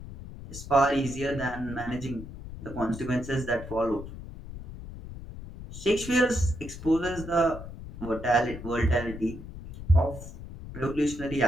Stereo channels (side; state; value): left; noise; rumble, 12 dB below the sound